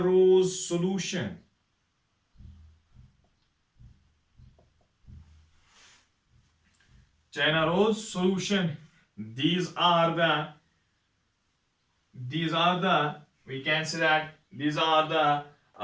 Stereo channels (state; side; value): identical; both; correlation 1.00